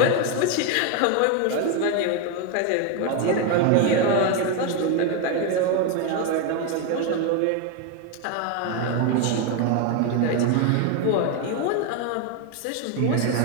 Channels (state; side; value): different; both; correlation 0.02